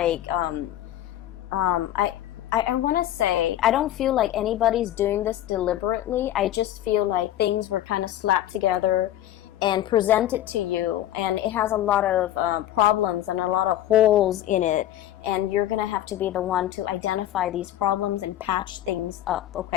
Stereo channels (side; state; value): right; quieter; 12.8 dB